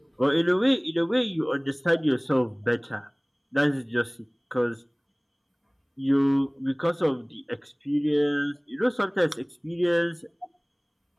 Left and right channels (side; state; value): both; identical; correlation 1.00